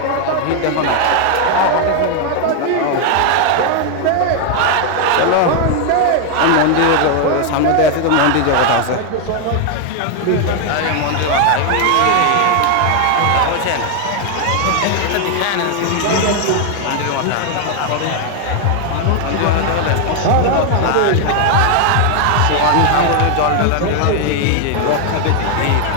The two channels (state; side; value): different; both; correlation 0.01